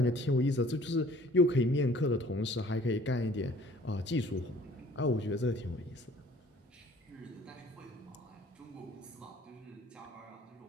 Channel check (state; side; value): normal; both; correlation 0.54